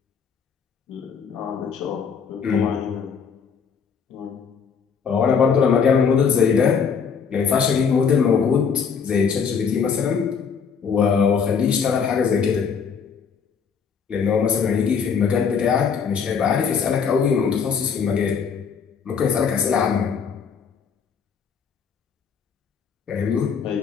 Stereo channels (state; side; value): quieter; right; 6.4 dB